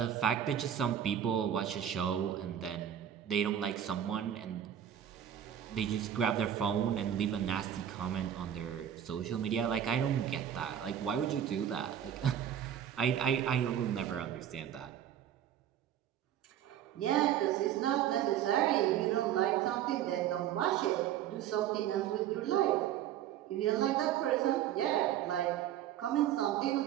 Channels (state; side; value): quieter; left; 10.3 dB